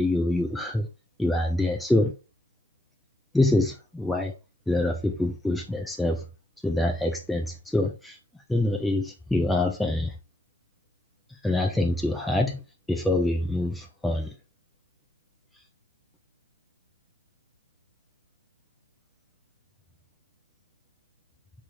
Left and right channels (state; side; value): normal; both; correlation 0.80